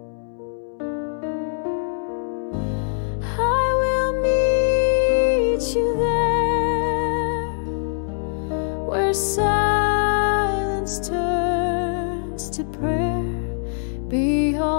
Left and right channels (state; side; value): silent; right; 64 dB below the other